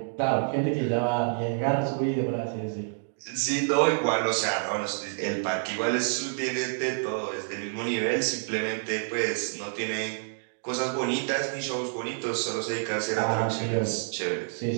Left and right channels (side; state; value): left; silent; digital silence